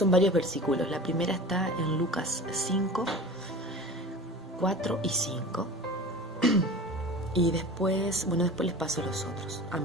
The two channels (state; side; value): normal; both; correlation 0.36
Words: varios versículos. La primera está en Lucas 5, 4 y 5. Y después les paso los otros. A